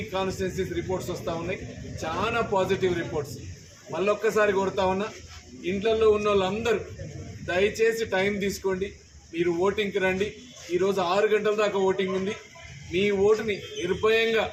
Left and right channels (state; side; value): identical; both; correlation 1.00